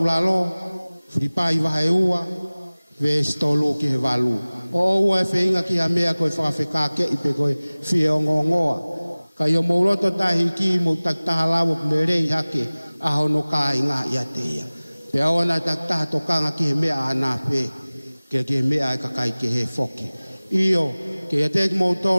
fripai wahe ua, vesi tolu ki he walu. O ua e wheinga ki ha mea koe whakawheka ke I pe koe fie o ngongoa. Ka i o mauloto tahi ki mo taktaha lawo kune rei hake, aho no ka I ngā ia te ia. Pe aona taktaha tokanga ki he mea ana pe, ke he mea e kakai ke he foki. Iyo, ke ia te mo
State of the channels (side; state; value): both; inverted; correlation -1.00